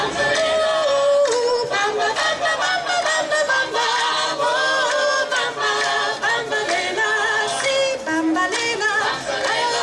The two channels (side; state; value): both; identical; correlation 1.00